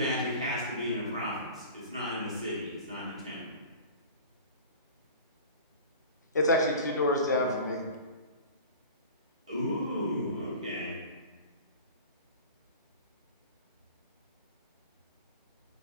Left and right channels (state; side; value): inverted; both; correlation -0.38